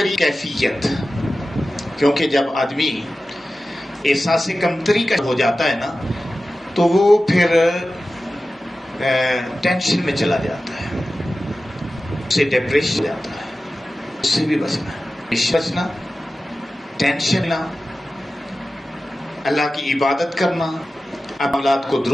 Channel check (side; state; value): both; normal; correlation 0.95